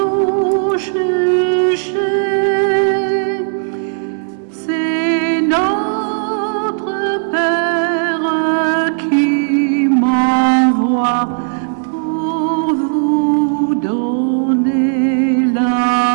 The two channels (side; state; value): left; silent; digital silence